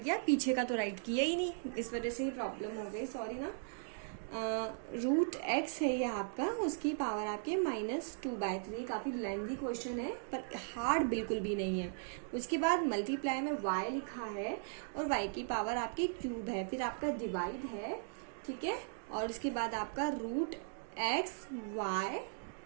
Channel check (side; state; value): left; silent; digital silence